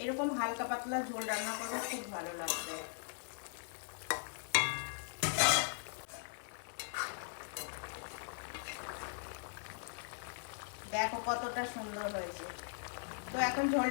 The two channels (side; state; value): right; silent; digital silence